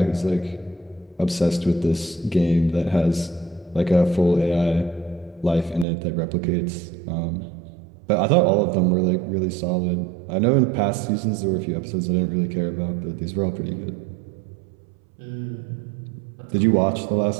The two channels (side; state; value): left; drops out; at 5.9 s